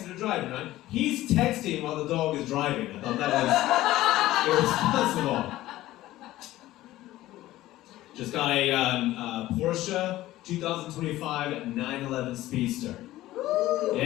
or driving, right? He's texting while the dog is driving. I thought that was irresponsible. Just got a Porsche 2025 911 Speedster.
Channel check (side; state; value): right; quieter; 15.8 dB